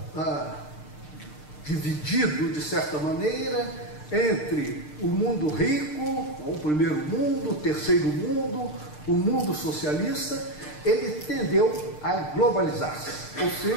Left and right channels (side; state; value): right; late; 6.6 ms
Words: dividido, de certa maneira, entre o mundo rico, o primeiro mundo, o terceiro mundo, o mundo socialista, ele tendeu a globalizar-se, ou